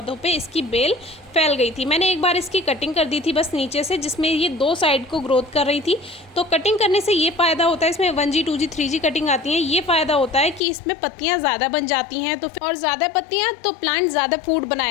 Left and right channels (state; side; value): drops out; right; at 10.6 s